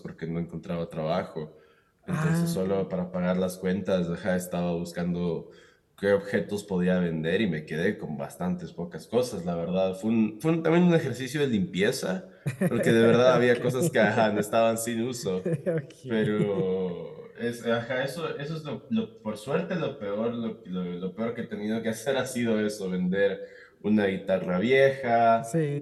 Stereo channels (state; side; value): identical; both; correlation 1.00